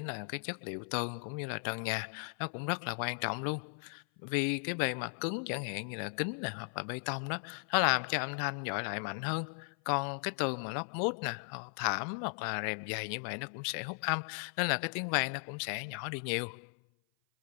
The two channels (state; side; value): silent; right; 53 dB below the other